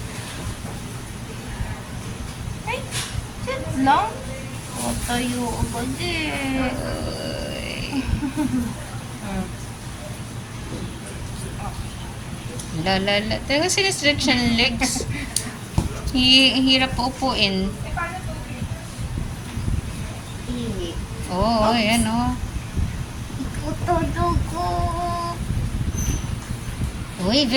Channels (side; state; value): both; identical; correlation 1.00